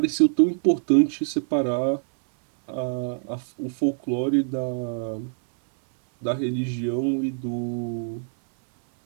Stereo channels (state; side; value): silent; left; 62 dB below the other